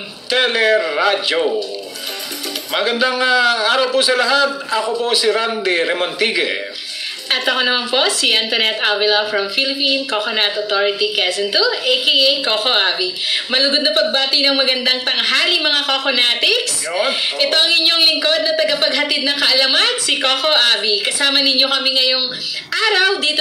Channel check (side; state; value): both; identical; correlation 1.00